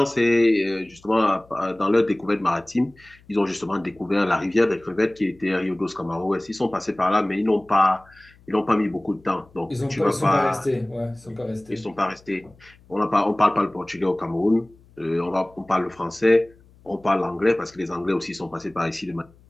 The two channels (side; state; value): left; noise; hum, 28 dB below the sound